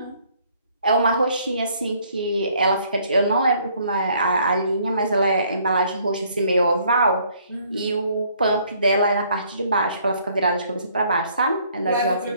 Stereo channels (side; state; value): both; inverted; correlation -0.64